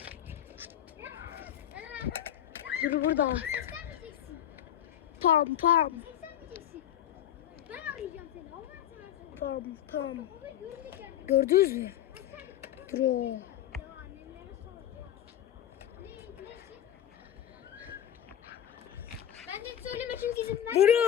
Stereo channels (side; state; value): right; quieter; 10.9 dB